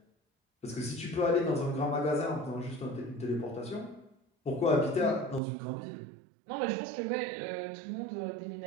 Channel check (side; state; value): left; drops out; at 5.4 s